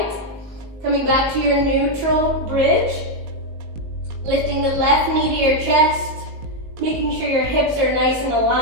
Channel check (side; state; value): left; late; 19 ms